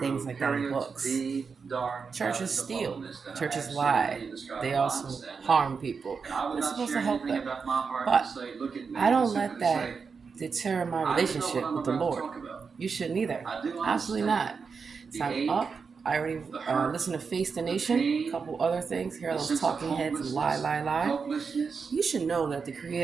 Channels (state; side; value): quieter; left; 5.4 dB